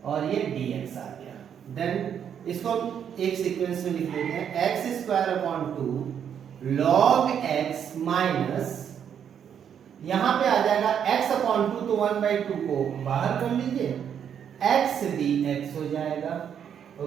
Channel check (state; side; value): quieter; left; 8.5 dB